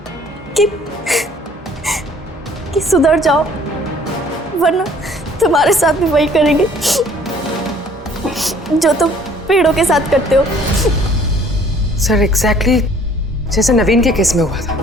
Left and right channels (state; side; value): normal; both; correlation 0.56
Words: कि सुधर जाओ वरना तुम्हारे साथ भी वही करेंगे जो तुम पेड़ों के साथ करते हो। सर, एग्जैक्टली जैसे नवीन के केस में हुआ था।